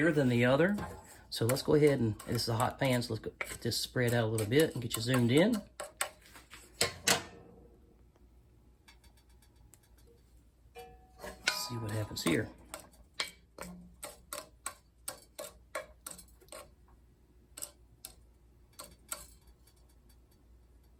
than the other. So let's go ahead and, this is a hot pan, so let's go get this spread out a little bit and get you zoomed in. Let's see what happens here.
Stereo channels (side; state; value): both; identical; correlation 1.00